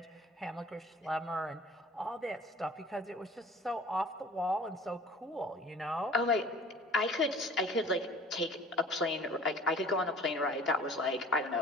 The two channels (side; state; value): both; normal; correlation 0.47